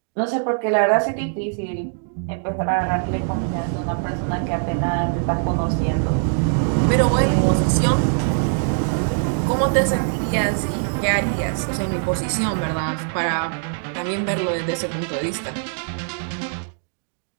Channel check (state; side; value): silent; left; digital silence